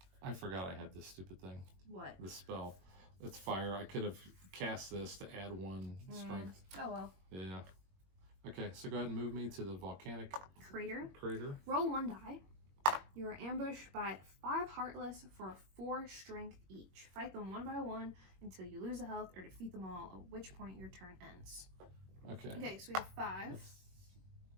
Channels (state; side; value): late; left; 21 ms